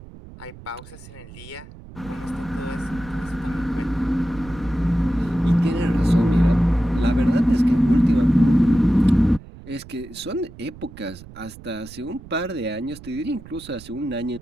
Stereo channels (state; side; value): noise; right; rumble, 18 dB below the sound